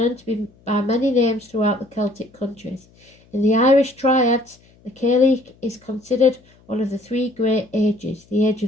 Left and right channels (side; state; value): left; noise; hum, 30 dB below the sound